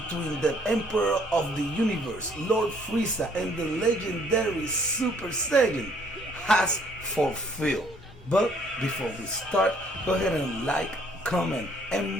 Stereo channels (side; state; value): both; normal; correlation 0.63